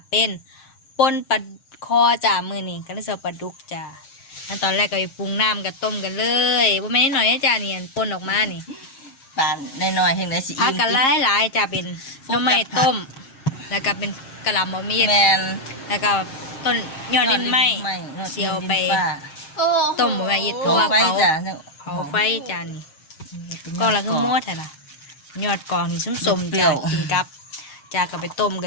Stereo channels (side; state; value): right; late; 7.5 ms